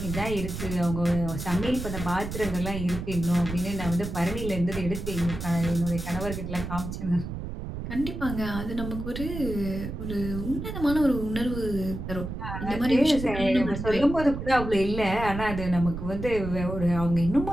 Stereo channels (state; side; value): noise; right; rumble, 7 dB below the sound